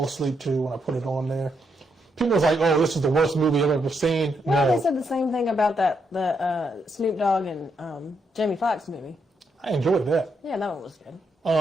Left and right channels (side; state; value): both; normal; correlation 0.79